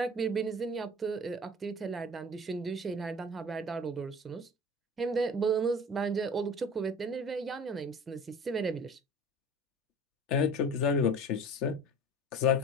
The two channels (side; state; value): both; normal; correlation 0.41